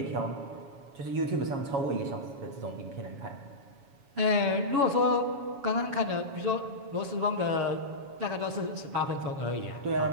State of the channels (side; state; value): left; late; 7.2 ms